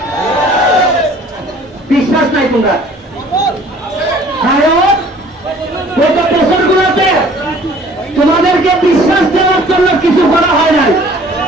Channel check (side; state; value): both; normal; correlation 0.53